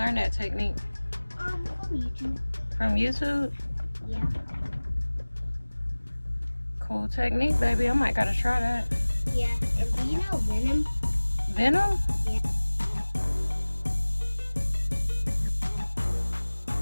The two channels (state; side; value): inverted; both; correlation -1.00